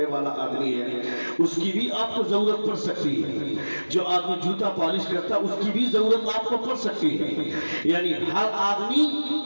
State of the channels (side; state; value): both; inverted; correlation -1.00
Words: والا آدمی ہے، اس کی بھی آپ کو ضرورت پڑ سکتی ہے۔ جو آدمی جوتا پالش کرتا ہے، اس کی بھی ضرورت آپ کو پڑ سکتی ہے۔ یعنی ہر